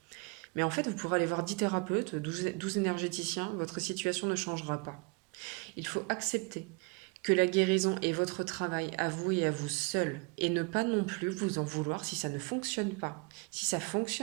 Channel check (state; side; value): quieter; left; 29.4 dB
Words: Mais en fait, vous pourrez aller voir 10 thérapeutes, 12 énergéticiens, votre situation ne changera pas. Il faut accepter que la guérison est votre travail à vous et à vous seul, et ne pas non plus vous en vouloir si ça ne fonctionne pas. Si ça